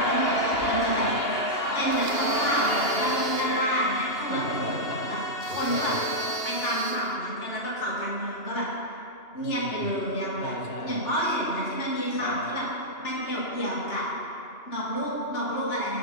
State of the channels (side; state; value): right; late; 2.9 ms